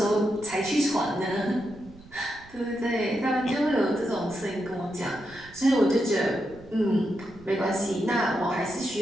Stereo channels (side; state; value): right; noise; rumble, 22 dB below the sound